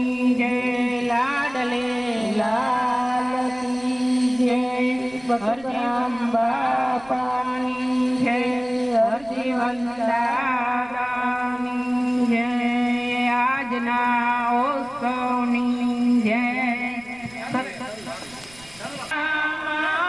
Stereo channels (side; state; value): right; noise; rumble, 24 dB below the sound